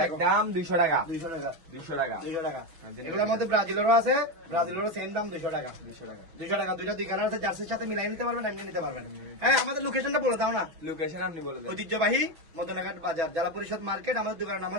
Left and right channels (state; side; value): late; left; 6.1 ms